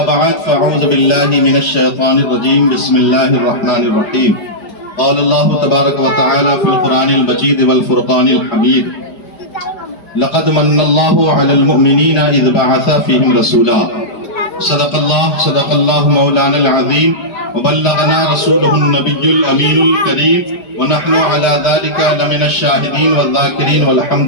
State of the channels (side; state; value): right; late; 5.0 ms